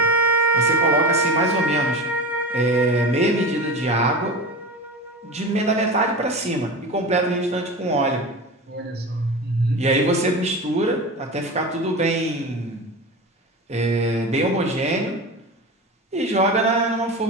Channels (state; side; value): normal; both; correlation 0.28